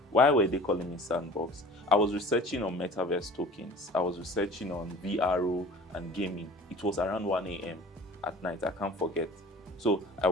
Why were they calling me Sandbox? I was researching on metaverse tokens. I was researching on VRO and gaming. It was around 1 a.m. at night, I can't forget. So I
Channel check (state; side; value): normal; both; correlation 0.44